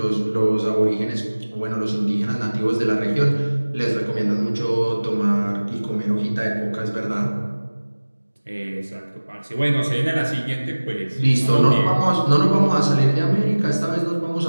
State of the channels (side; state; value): both; inverted; correlation -1.00